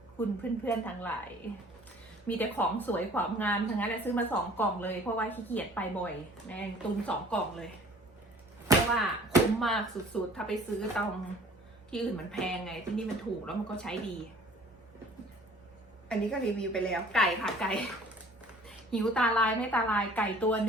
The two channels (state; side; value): normal; both; correlation 0.50